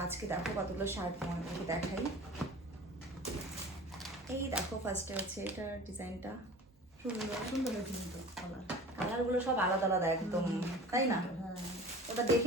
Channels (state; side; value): normal; both; correlation 0.40